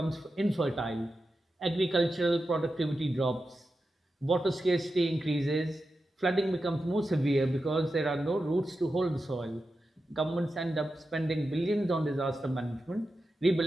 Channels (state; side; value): normal; both; correlation 0.91